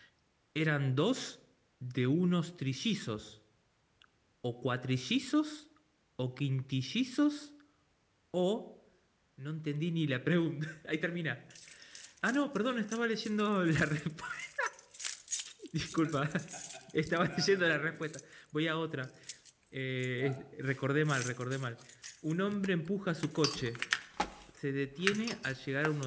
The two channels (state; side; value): identical; both; correlation 1.00